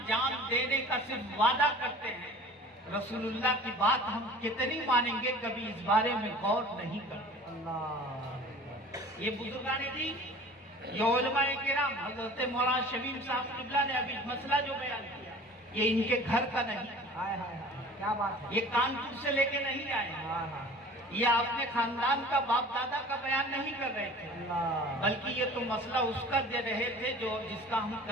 جان دینے کا صرف وعدہ کرتے ہیں، رسول اللہ کی بات ہم کتنی مانیں گے کبھی اس بارے میں غور نہیں کرتے۔ اللہ، یہ بزرگان جی، یہ علماء کرام، حضرت مولانا شبیر صاحب قبلہ نے ابھی مسئلہ جو بیان کیا یہ ان کے گھر کا نہیں، ہائے ہائے ہائے، کیا بات ہے، یہ کانپور سے لے کے نہیں آئے، ہاں ہاں، یہ اپنے خاندان کا باپ دادا کا بیان نہیں کر رہے تھے، اللہ، بلکہ یہ تو مسئلہ اس کا دے رہے تھے جو جس کا ہم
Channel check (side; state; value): both; normal; correlation 0.44